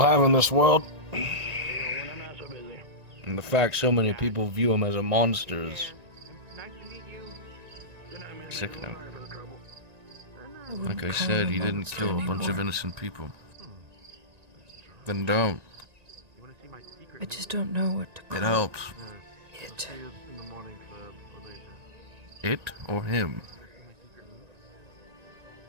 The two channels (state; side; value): late; left; 1.9 ms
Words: in this world. And the fact so many people view him as a monster is sickening. Like I said, he didn't kill a bunch of innocent people. Then don't. I just don't know what to call It helps. it. It or him?